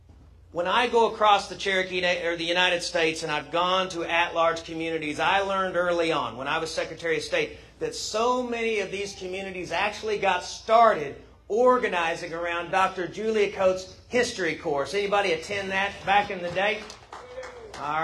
When I go across the Cherokee or the United States and I've gone to at-large communities, I learned early on when I was Secretary of State that so many of these communities actually got started organizing around Dr. Julia Coates' history course. Anybody attend that back in the day? All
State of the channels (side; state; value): both; identical; correlation 1.00